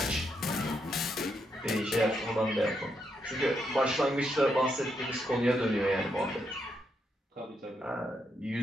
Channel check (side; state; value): both; normal; correlation 0.80